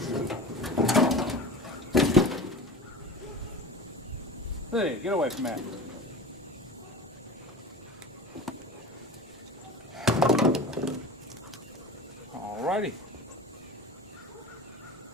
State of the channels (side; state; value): both; normal; correlation 0.34